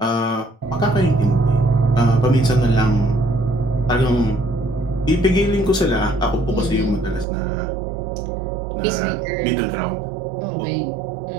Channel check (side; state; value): left; drops out; at 7.2 s